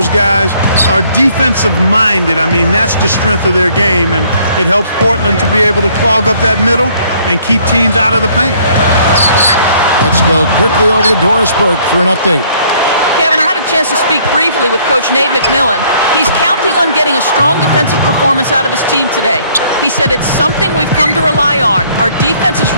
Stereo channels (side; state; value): both; inverted; correlation -0.62